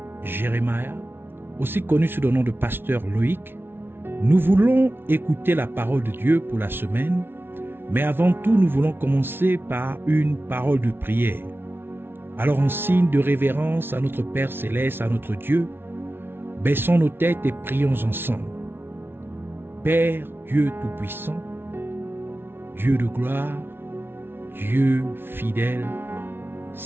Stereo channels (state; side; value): late; left; 0.11 ms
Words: Jérémia, aussi connu sous le nom de pasteur Loïc. Nous voulons écouter la parole de Dieu pour la semaine, mais avant tout, nous voulons commencer par une parole de prière. Alors, en signe de révérence à notre Père Céleste, à notre Dieu, baissons nos têtes et prions ensemble. Père Dieu Tout-Puissant, Dieu de gloire, Dieu fidèle,